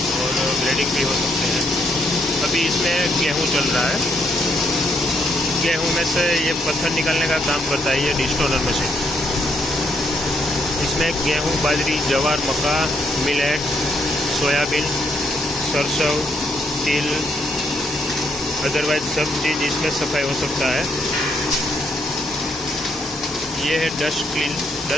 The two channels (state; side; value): normal; both; correlation 0.74